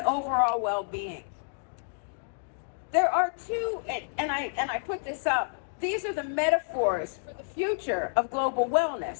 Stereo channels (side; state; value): right; silent; digital silence